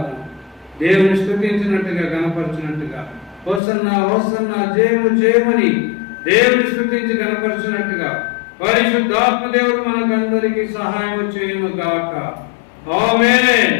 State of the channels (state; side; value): drops out; right; at 3.6 s